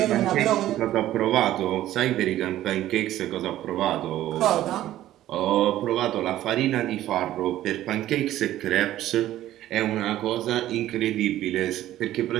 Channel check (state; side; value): quieter; left; 13.7 dB